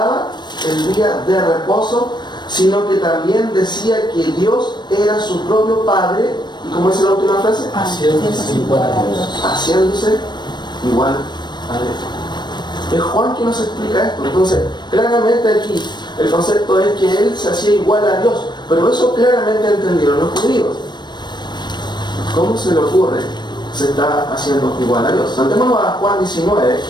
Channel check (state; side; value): late; right; 0.21 ms